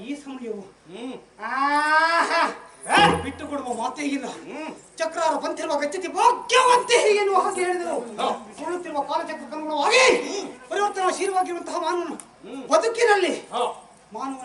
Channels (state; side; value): identical; both; correlation 1.00